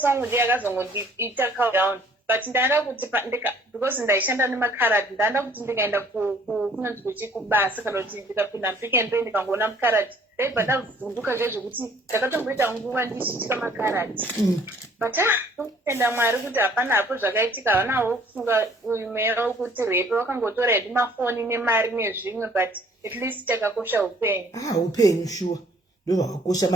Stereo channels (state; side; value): normal; both; correlation 0.57